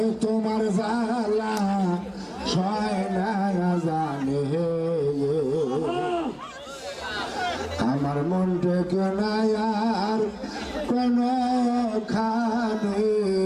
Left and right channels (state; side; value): identical; both; correlation 1.00